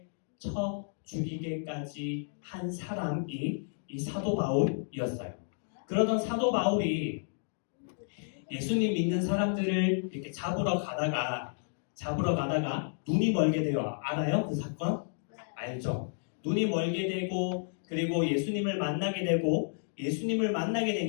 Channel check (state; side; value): silent; right; digital silence